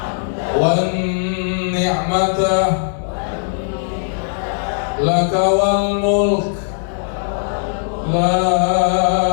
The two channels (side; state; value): right; silent; digital silence